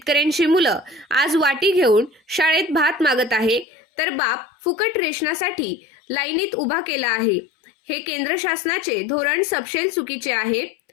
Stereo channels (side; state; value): right; drops out; at 3.7 s